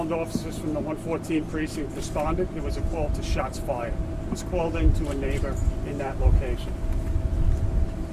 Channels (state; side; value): identical; both; correlation 1.00